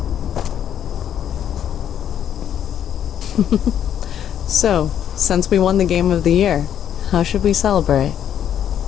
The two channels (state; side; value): quieter; right; 9.7 dB